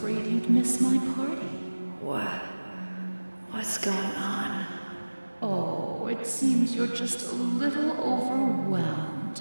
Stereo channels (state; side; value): inverted; both; correlation -1.00